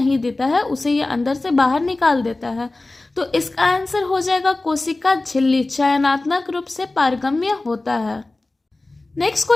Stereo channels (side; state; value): right; quieter; 3.0 dB